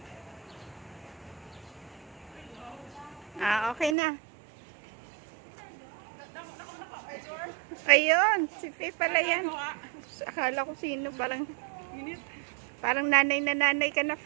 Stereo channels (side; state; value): left; drops out; at 4.0 s